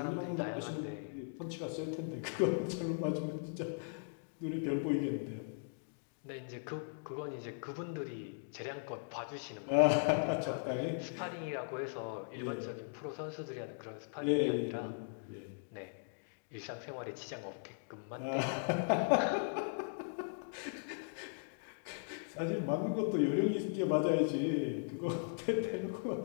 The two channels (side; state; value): right; silent; digital silence